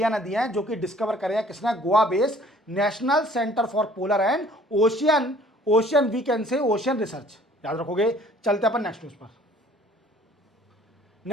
ने दिए हैं, जो कि डिस्कवर करे हैं किसने, Goa based national centre for polar and ocean we can say ocean research. याद रखोगे। चलते अपन नेक्स्ट न्यूज पर।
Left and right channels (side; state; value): both; normal; correlation 0.55